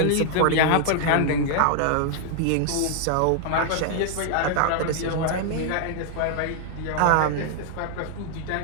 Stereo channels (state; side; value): different; both; correlation 0.00